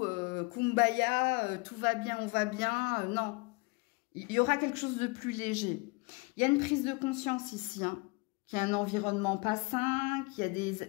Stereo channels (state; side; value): quieter; right; 27.1 dB